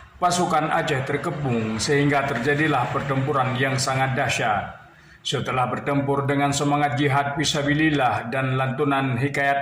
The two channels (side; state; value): both; identical; correlation 1.00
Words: Pasukan Aceh terkepung sehingga terjadilah pertempuran yang sangat dahsyat. Setelah bertempur dengan semangat jihad fisabilillah dan lantunan